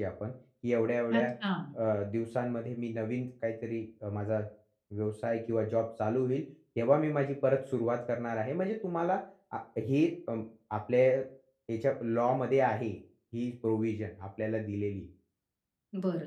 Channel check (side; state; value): both; identical; correlation 1.00